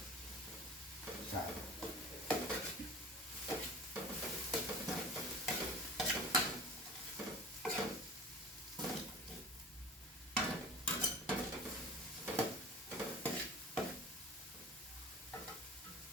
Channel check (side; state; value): both; normal; correlation 0.38